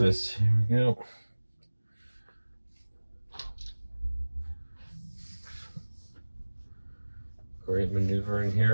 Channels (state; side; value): inverted; both; correlation -1.00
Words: Here we go. Great maneuvering